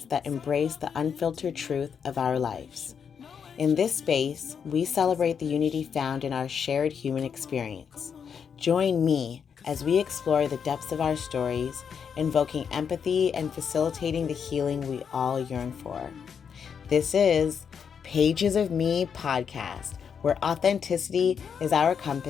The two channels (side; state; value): right; quieter; 7.0 dB